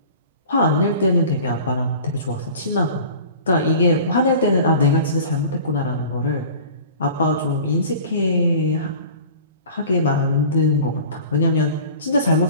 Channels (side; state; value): both; inverted; correlation -0.42